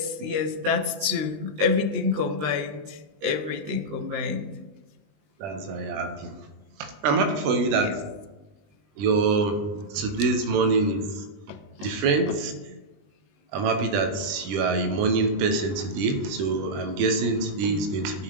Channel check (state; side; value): late; left; 20 ms